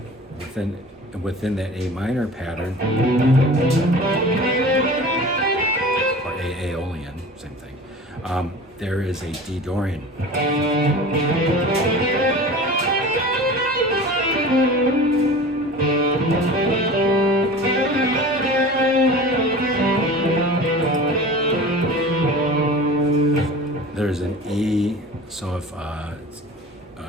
within that A minor pattern, or Aeolian, same thing, there is a D Dorian. There's an E, so if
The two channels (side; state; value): both; normal; correlation 0.37